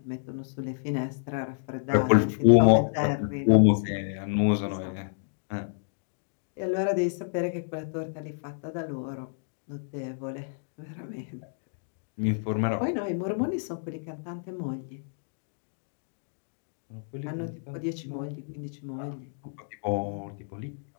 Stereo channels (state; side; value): silent; right; digital silence